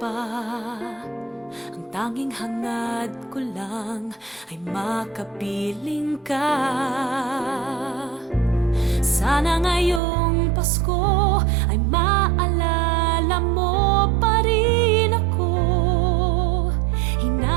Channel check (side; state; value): left; drops out; at 10.0 s